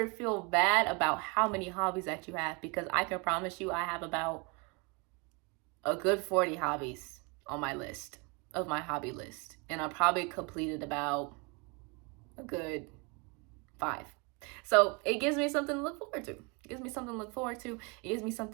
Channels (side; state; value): left; quieter; 29.7 dB